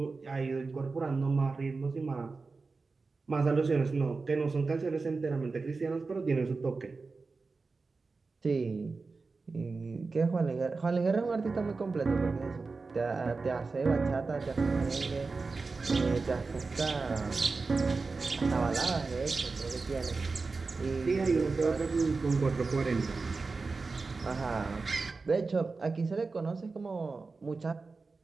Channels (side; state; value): left; quieter; 4.1 dB